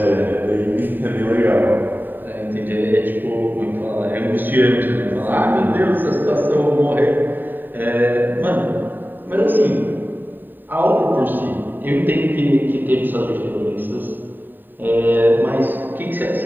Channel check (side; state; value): left; late; 0.092 ms